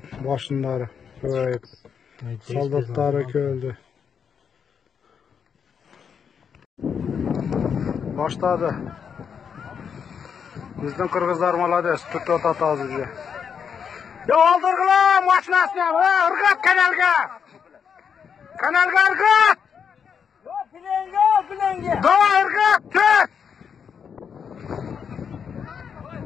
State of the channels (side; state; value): right; quieter; 7.0 dB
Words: boshindari. Soldatlari keldi. Başladı. Bizden Kırgızlar malades. Tutup atağız bize. Ya aldırgılar maşinasını. Irgat kanalga. Kanalga ırgat. Plenge. Daha ırgat. Tüt.